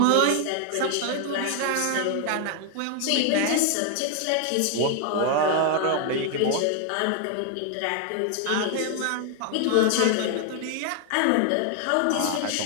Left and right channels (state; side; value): different; both; correlation 0.00